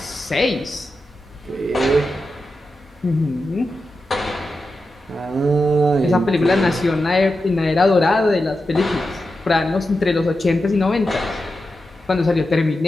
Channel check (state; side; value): normal; both; correlation 0.90